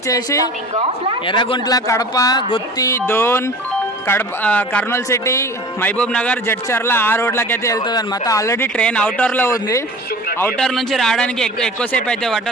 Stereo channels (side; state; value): both; normal; correlation 0.40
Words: ఎర్రగుంట్ల, కడప, గుత్తి, దోన్, కర్నూలు సిటీ, మహబూబ్ నగర్, జడ్చర్ల ఆ రోడ్లకి అయితే వెళ్తుంది అనమాట. ఆల్రెడీ ట్రైన్ అవుటర్లో ఉంది. అవుటర్ నుంచి రావడానికి ఎక్కువసేపు అయితే